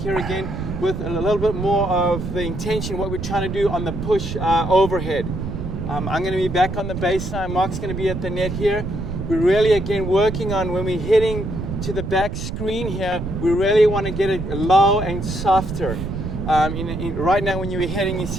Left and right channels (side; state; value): right; noise; rumble, 5 dB below the sound